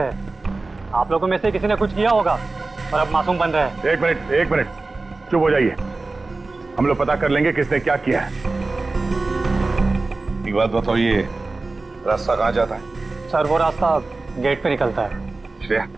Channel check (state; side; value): quieter; left; 3.5 dB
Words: आप लोगों में से किसी ने कुछ किया होगा और अब मासूम बन रहे हैं। एक मिनट चुप हो जाइए, हम लोग पता कर लेंगे किसने क्या किया है। एक बात बताओ, ये रास्ता कहाँ जाता है? सर वो रास्ता गेट पे निकलता है। श्रेया,